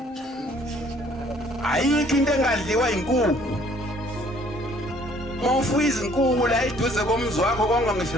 Ayikho into engadliwa inkukhu. Mawufuya izinkukhu la eduze komzi wakho konke ngisho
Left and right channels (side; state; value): both; normal; correlation 0.59